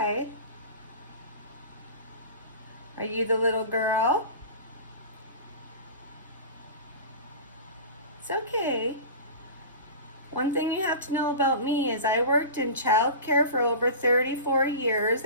Are you the little girl? It's okay. One thing you have to know about me is I worked in childcare for over 34 years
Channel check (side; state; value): both; inverted; correlation -0.34